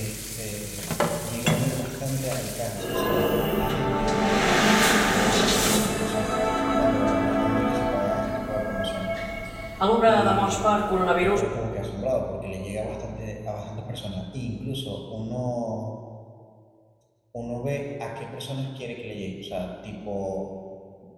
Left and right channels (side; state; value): both; identical; correlation 1.00